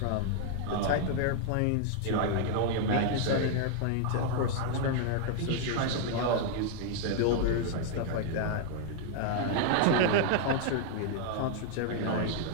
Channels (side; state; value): both; different; correlation 0.00